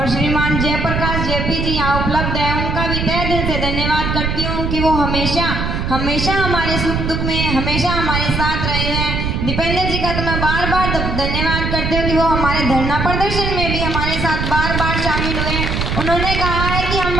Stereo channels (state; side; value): noise; right; rumble, 1 dB below the sound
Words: श्रीमान जयप्रकाश जेपी जी यहाँ उपलब्ध है, उनका भी तहे दिल से धन्यवाद करती हूँ कि वो हमेशा हमेशा हमारे सुख दुख में हमेशा हमारे साथ रहे हैं। दीपेंद्र जी का तो मैं बार बार धन्यवाद करती हूँ कि वो हमारे धरना प्रदर्शन में भी हमारे साथ बार बार शामिल हुए। उन्होंने कहा है कि हम